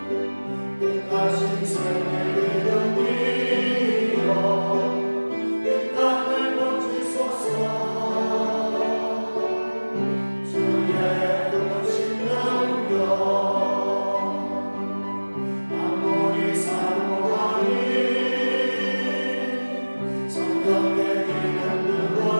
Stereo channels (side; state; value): both; inverted; correlation -1.00